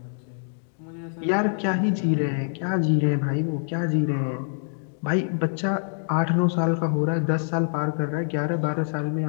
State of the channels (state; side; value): silent; right; digital silence